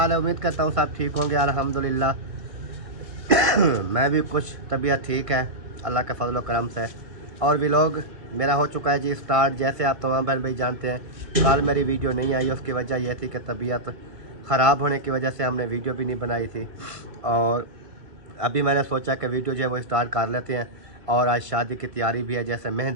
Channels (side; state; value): left; late; 1.6 ms